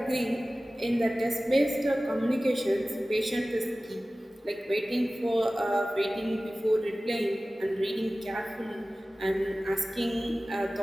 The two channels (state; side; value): normal; both; correlation 0.97